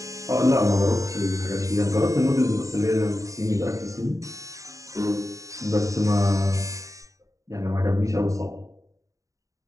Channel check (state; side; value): late; left; 0.16 ms